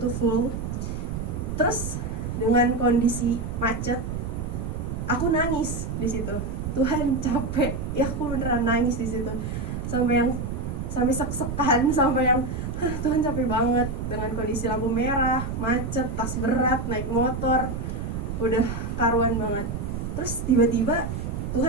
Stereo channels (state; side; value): noise; right; rumble, 4 dB below the sound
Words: full. Terus dengan kondisi macet, aku nangis di situ. Tuhan capek, ya aku beneran nangis di situ, sampai sek-sekan, sampai yang Tuhan capek banget dengan kondisi lampu merah, macet, tas berat, naik motor. udah karuan banget. Terus tiba-tiba